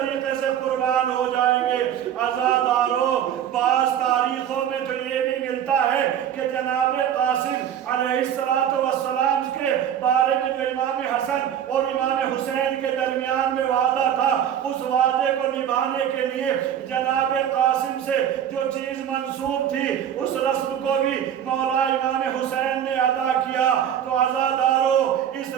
سے قربان ہو جائیں گے۔ عزادارو، بعض تاریخوں میں تو یہ بھی ملتا ہے کہ جناب قاسم علیہ السلام کے بارے میں جو امام حسن اور امام حسین کے درمیان میں وعدہ تھا، اس وعدے کو نبھانے کے لیے جناب قاسم سے جو چیز منسوب تھی اس رسم کو بھی مولا امام حسین نے ادا کیا۔ تو عزادارو، اس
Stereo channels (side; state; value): left; quieter; 9.7 dB